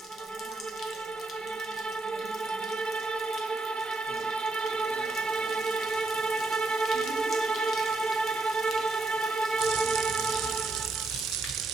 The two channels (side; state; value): left; quieter; 3.2 dB